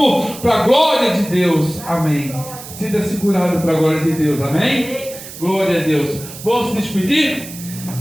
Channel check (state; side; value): noise; right; hiss, 14 dB below the sound